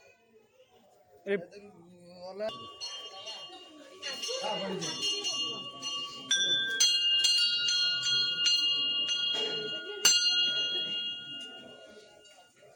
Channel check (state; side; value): identical; both; correlation 1.00